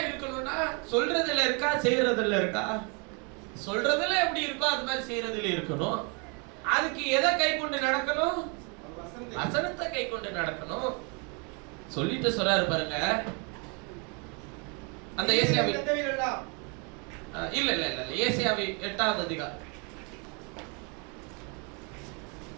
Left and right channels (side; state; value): left; quieter; 33.9 dB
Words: இருக்கணும்னா சொல்றதுல இருக்கா, செய்யறதுல இருக்கா? சொல்றதுல எப்படி இருக்கோ அது மாதிரி செய்யறதுல இருக்கணும். அதுக்கு எதை கை கொண்டு நடக்கணும்? வசனத்தை கை கொண்டு நடக்கணும். சொல்லிட்டு சொல்றாரு பாருங்க, அந்த ஏசாயாவி இல்ல இல்ல இல்ல ஏசாயாவி 8வது அதிகாரம்,